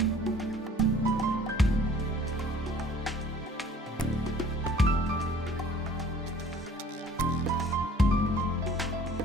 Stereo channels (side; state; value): both; normal; correlation 0.52